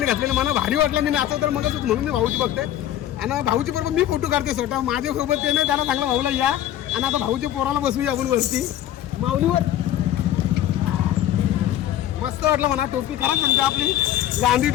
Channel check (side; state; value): right; quieter; 12.1 dB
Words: घातलेली. मला भारी वाटलं. मी नाचव तर मग म्हणून मी भाऊची बघते. आणि भाऊची बरोबर मी फोटो काढते स्वतः. माझ्यासोबत ते नाही, त्यांना सांगलं भाऊला या. आणि आता भाऊच्या पोराला बसूया आपण वरती माऊलीवर. मस्त वाटलं म्हणा. टोपी खरंच म्हणते आपली गांधी